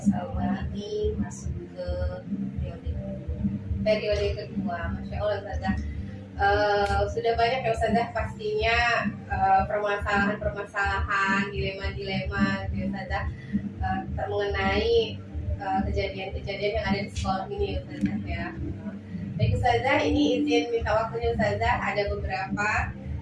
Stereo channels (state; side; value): identical; both; correlation 1.00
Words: ini masuk ke periode kedua. Masya Allah Ustazah. Sudah banyak ya Ustazah pastinya permasalahan-permasalahan, dilema-dilema gitu Ustazah mengenai kejadian-kejadian yang ada di sekolah ini ya Ustazah ya. Baik Ustazah, ini izin minta waktunya Ustazah, ada beberapa